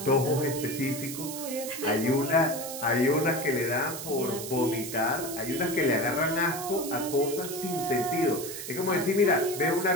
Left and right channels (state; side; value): noise; right; hiss, 8 dB below the sound